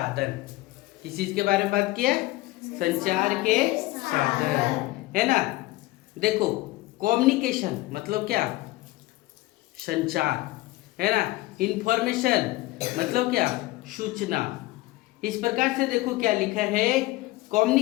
किस चीज के बारे में बात किया? संचार के साधन, है ना। देखो कम्युनिकेशन मतलब क्या? संचार, है ना। इंफॉर्मेशन मतलब क्या? सूचना। इस प्रकार से देखो क्या लिखा है,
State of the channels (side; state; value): right; quieter; 19.1 dB